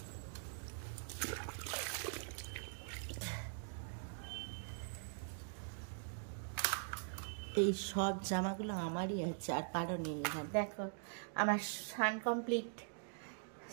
এই সব জামাগুলো আমারই আছে, আর কারো নেই। এখানে দেখো আমার সাউন্ড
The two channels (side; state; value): left; silent; digital silence